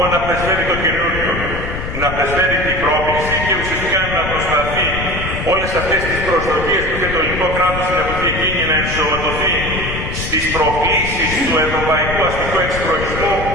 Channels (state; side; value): noise; left; rumble, 6 dB below the sound